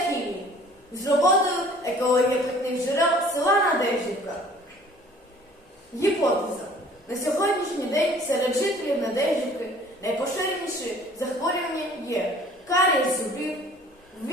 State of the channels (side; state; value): both; normal; correlation 0.51